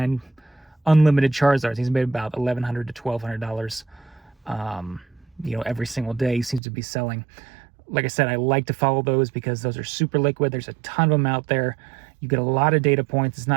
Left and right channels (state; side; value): drops out; left; at 6.6 s